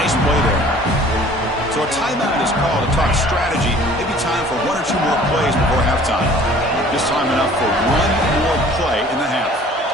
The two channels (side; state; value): both; normal; correlation 0.50